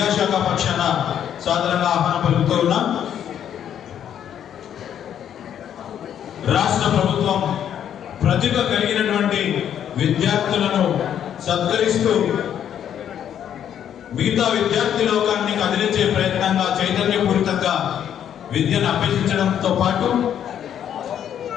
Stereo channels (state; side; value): quieter; right; 9.6 dB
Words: పక్షాన సాధారణంగా ఆహ్వానం పలుకుతూ ఉన్నాం. రాష్ట్ర ప్రభుత్వం ప్రతిభ కలిగినటువంటి విద్యార్థులను సత్కరిస్తూ మిగతా విద్యార్థి లోకాన్ని కదిలించే ప్రయత్నంగా చైతన్యపూరితంగా విద్యను అభ్యసించడంతో పాటు